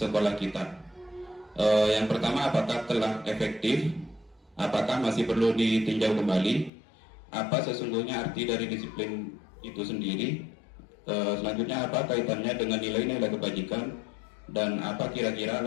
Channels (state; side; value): drops out; right; at 6.7 s